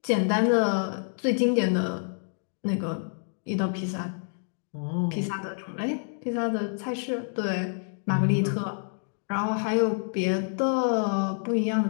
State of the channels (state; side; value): silent; right; 60 dB below the other